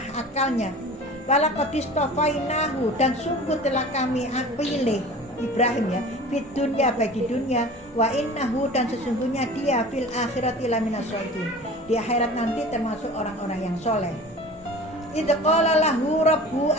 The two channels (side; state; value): both; normal; correlation 0.40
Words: akalnya. Walaqad istafainahu, dan sungguh telah kami pilih Ibrahim ya, fit dunya, bagi dunia, wa innahu, dan sesungguhnya dia fil akhirati laminas sholihin, di akhirat nanti termasuk orang-orang yang soleh. Idh qala lahu rabbu